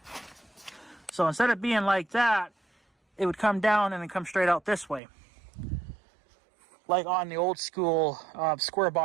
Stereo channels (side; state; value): left; drops out; at 5.0 s